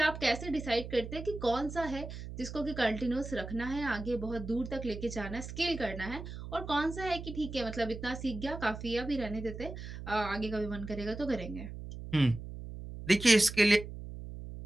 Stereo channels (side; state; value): right; noise; hum, 10 dB below the sound